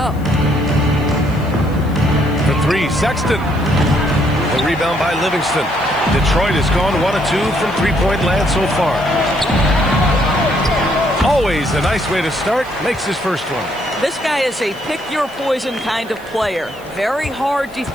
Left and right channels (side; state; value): left; noise; hiss, 25 dB below the sound